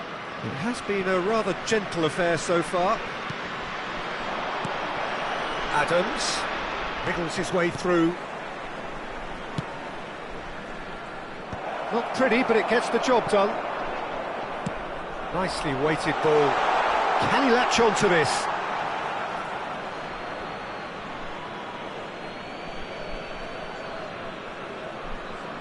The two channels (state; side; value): identical; both; correlation 1.00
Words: It has been a rather gentle affair so far. Adams wriggles his way through. Not pretty, but it gets the job done. Nicely weighted ball. Can he latch on to this?